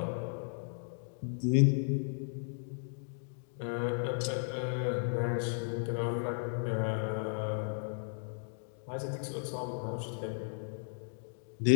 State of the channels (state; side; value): silent; right; digital silence